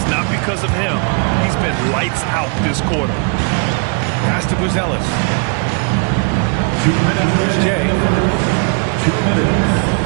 not because of him. He's been lights out this quarter. Pass to Buzelis. 2 minutes. Here's Jay. 2 minutes.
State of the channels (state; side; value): quieter; left; 35.8 dB